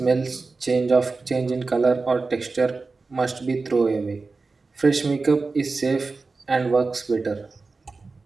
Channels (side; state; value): left; quieter; 4.0 dB